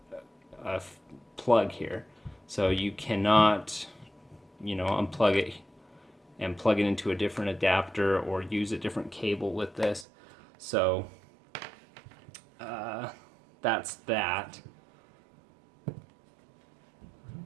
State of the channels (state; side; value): drops out; left; at 10.1 s